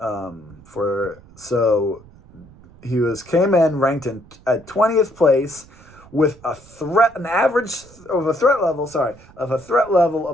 He came in ranked at 20th place with a threat level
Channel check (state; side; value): noise; right; rumble, 24 dB below the sound